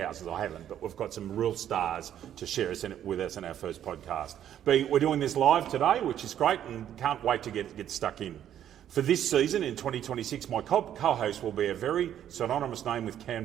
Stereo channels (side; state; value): left; quieter; 10.5 dB